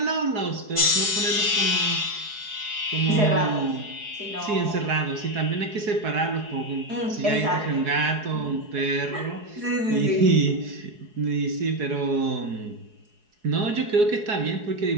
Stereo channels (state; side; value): late; left; 4.7 ms